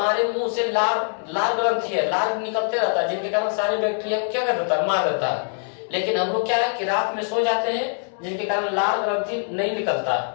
मुंह से लाल ग्रंथि है, लाल निकलते रहता है, जिनके कारण सारे बैक्टीरिया को क्या कर देता है, मार देता है। लेकिन हम लोग क्या है कि रात में सो जाते हैं, जिनके कारण लाल ग्रंथि नहीं निकलता,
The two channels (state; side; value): silent; right; 57 dB below the other